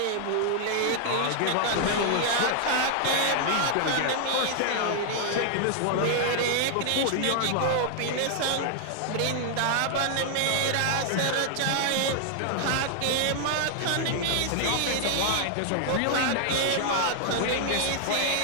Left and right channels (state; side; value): different; both; correlation 0.00